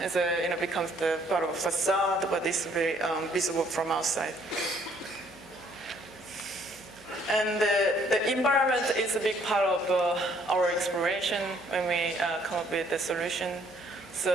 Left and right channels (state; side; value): noise; right; hum, 27 dB below the sound